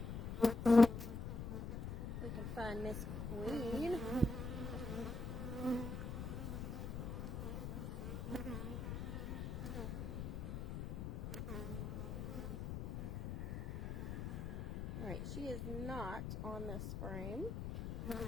We can find Miss Queen. Alright, she is not on this frame.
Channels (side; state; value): left; noise; rumble, 5 dB below the sound